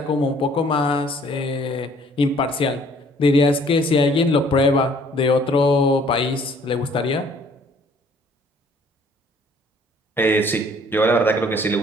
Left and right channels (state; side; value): normal; both; correlation 0.59